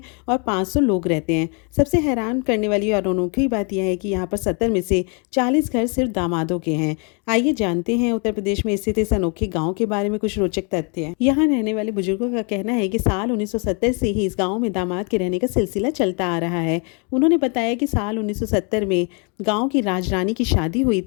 और 500 लोग रहते हैं। सबसे हैरान करने वाली और अनोखी बात यह है कि यहाँ पर 70 में से 40 घर सिर्फ दामादों के हैं। आइए जानते हैं उत्तर प्रदेश में स्थित इस अनोखे गांव के बारे में कुछ रोचक तथ्य। यहाँ रहने वाले बुजुर्गों का कहना है कि साल 1970 से ही इस गांव में दामाद के रहने का सिलसिला चलता आ रहा है। उन्होंने बताया कि साल 1970 में गांव की राजरानी की शादी हुई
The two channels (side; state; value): right; quieter; 35.5 dB